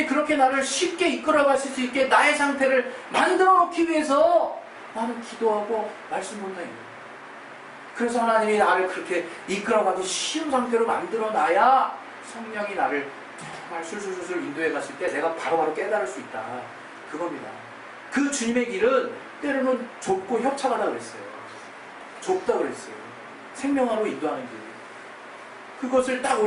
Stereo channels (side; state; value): both; identical; correlation 1.00